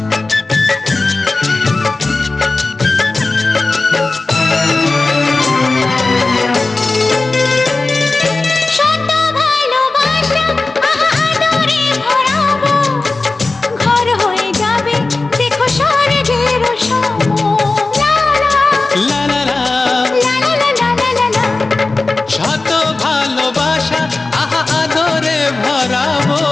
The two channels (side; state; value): right; quieter; 3.4 dB